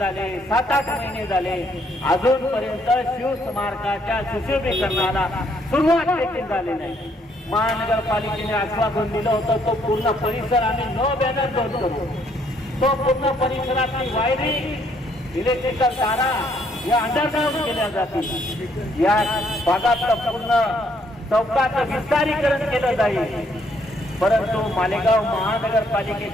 7-8 महिने झाले, अजूनपर्यंत शिवस्मारकाच्या सुशोभीकरणाला सुरुवात देखील झाली नाही. महानगरपालिकेने आश्वासन दिलं होतं तो पूर्ण परिसर आम्ही नो बॅनर बंद करू. तो पूर्ण परिसरातली वायरिंग, इलेक्ट्रिकल तारा या अंडरग्राउंड केल्या जातील. या भागातलं पूर्ण चौकाचं विस्तारीकरण केलं जाईल. परंतु मालेगाव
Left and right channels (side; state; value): both; normal; correlation 0.69